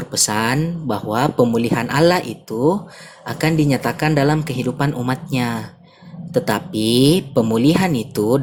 bahwa pemulihan Allah itu akan dinyatakan dalam kehidupan umatnya. Tetapi pemulihan itu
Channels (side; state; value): both; identical; correlation 1.00